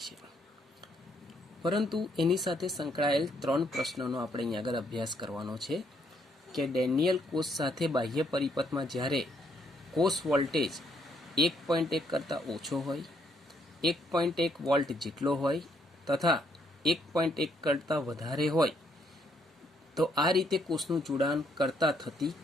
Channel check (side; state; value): both; normal; correlation 0.71